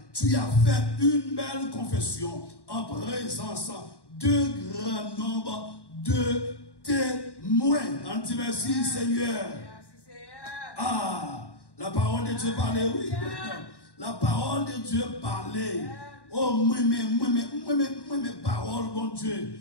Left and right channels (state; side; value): late; right; 1.1 ms